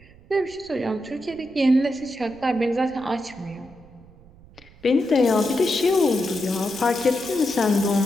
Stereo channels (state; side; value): noise; right; rumble, 24 dB below the sound